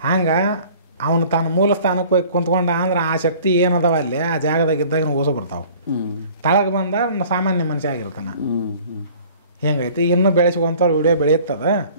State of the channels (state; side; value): inverted; both; correlation -0.50